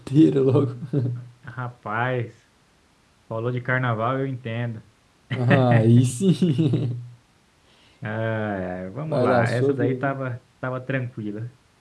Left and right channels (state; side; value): identical; both; correlation 1.00